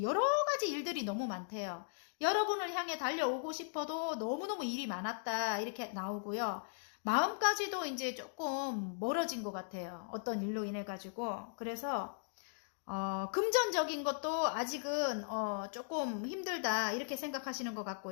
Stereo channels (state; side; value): silent; right; digital silence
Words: 여러 가지 일들이 너무 많대요. 여러분을 향해 달려오고 싶어도 너무너무 일이 많았다 이렇게 나오고요. 마음까지도 이제 조금 멀어진 것 같아요. 어떤 일로 인해 가지고. 그래서 금전적인 것도 아직은 조금 힘들다 이렇게 생각하시는 것